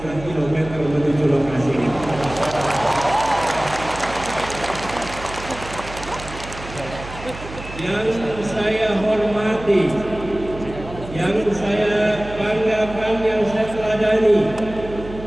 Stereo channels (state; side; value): noise; right; hum, 13 dB below the sound